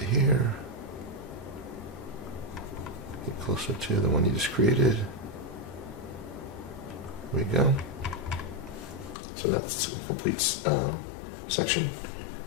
here. Get closer to the one you just created. There we go. So that's a complete section.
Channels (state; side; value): drops out; right; at 9.2 s